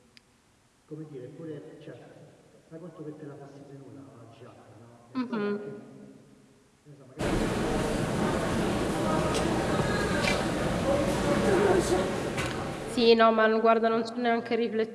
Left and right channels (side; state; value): both; identical; correlation 1.00